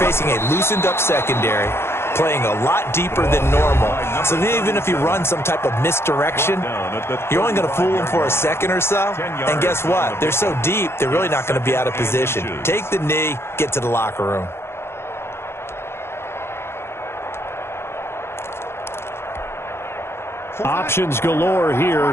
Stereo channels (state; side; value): late; right; 0.12 ms